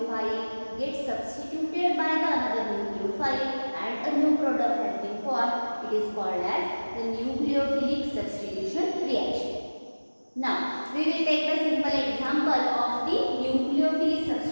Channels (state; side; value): inverted; both; correlation -1.00